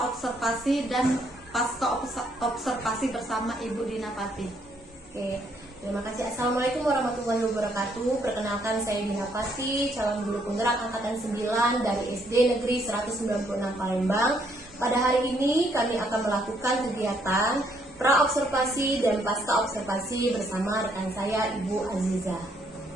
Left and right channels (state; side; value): normal; both; correlation 0.70